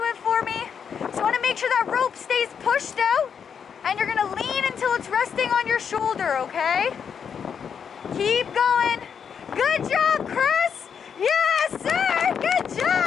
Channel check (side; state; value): right; quieter; 7.1 dB